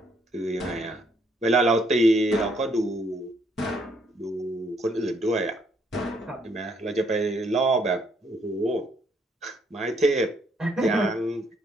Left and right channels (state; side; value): normal; both; correlation 0.70